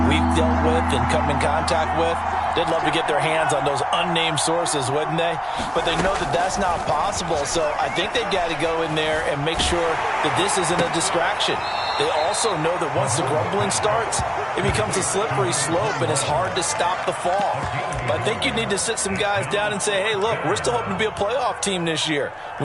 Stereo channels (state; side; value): identical; both; correlation 1.00